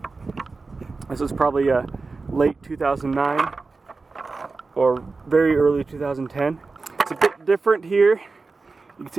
This was probably late 2009 or very early 2010. It's a bit different here. You can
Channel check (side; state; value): left; quieter; 4.0 dB